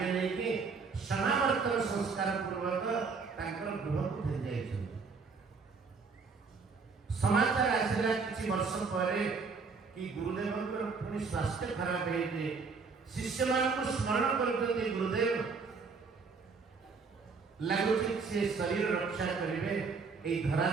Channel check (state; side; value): quieter; left; 4.8 dB